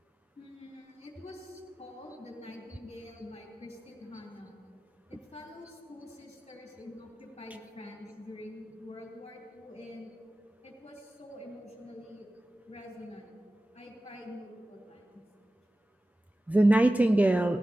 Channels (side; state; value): both; normal; correlation 0.95